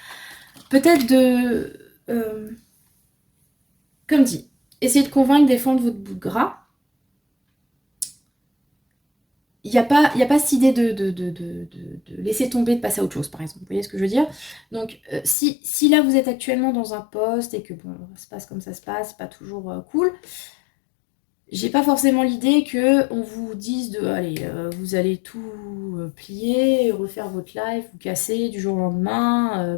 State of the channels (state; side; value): drops out; right; at 15.4 s